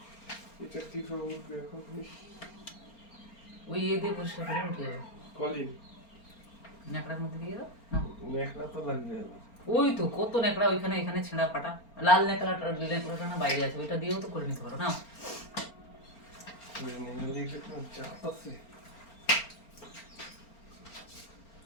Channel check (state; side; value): late; right; 4.4 ms